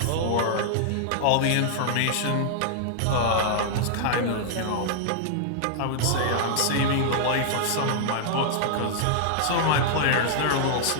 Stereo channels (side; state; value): both; different; correlation -0.01